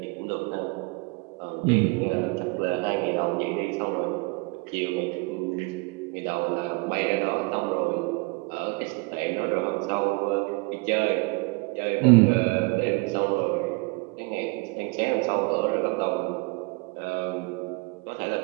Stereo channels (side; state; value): left; quieter; 29.2 dB